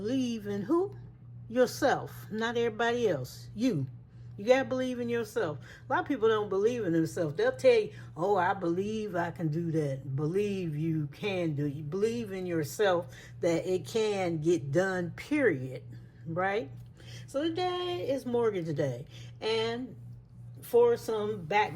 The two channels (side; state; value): both; identical; correlation 1.00